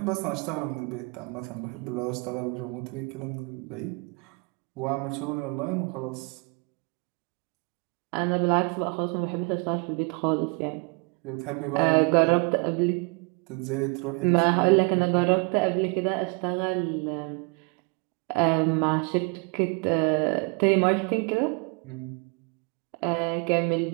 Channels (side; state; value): left; quieter; 32.9 dB